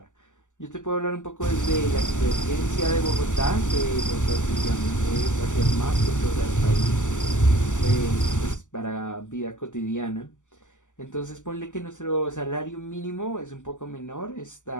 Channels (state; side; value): late; right; 0.86 ms